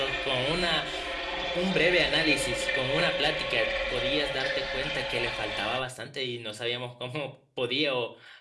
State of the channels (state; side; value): identical; both; correlation 1.00